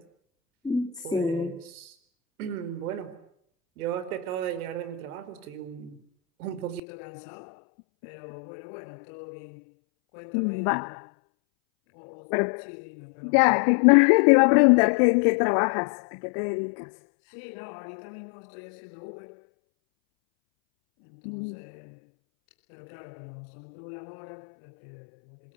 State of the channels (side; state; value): right; drops out; at 6.8 s